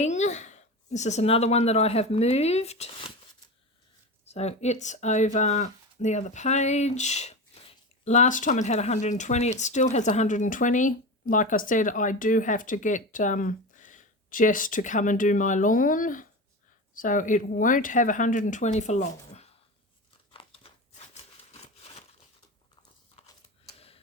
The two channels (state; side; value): normal; both; correlation 0.25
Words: This is another one that I have moved. So it's over the other page. Last time it had 120. It still has 120. Like I said, I do have to get Jess to come and do my lawn. So it won't have 120 for long.